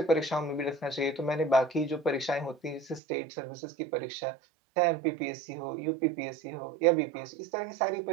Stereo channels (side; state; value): left; drops out; at 3.0 s